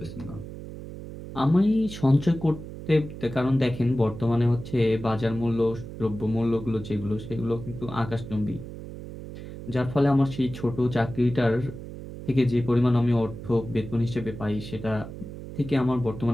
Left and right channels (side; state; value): right; noise; hum, 11 dB below the sound